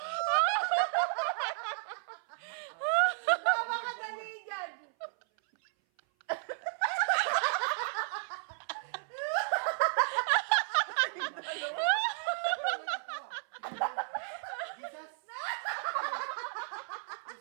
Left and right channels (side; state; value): left; silent; 56 dB below the other